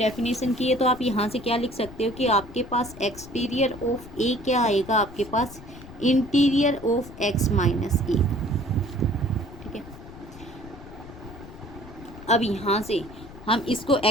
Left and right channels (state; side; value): noise; left; rumble, 17 dB below the sound